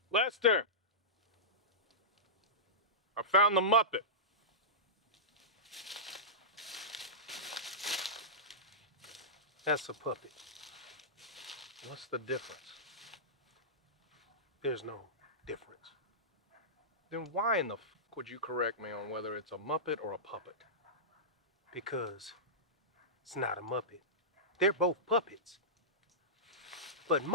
Lester! I found the Muppet. That's a puppet. What's the difference? There's no difference. Then why in the f*** would you correct me on whether it's a Muppet or a puppet? Because it's not a Muppet. They're both puppets. But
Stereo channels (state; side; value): normal; both; correlation -0.17